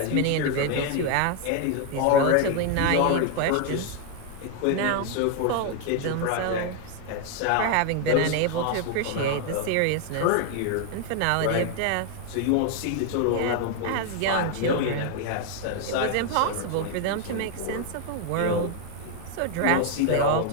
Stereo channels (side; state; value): both; different; correlation 0.00